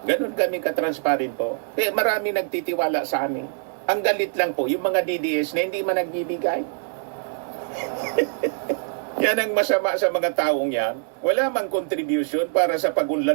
Ganon kami ka-transparent po. Marami nagtitiwala sa amin. Ang galit lang po, yung mga DDS na hindi man nagbibigay. Yan ang masama sa mga taong yan. Wala mang contribution para sa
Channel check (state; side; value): silent; left; digital silence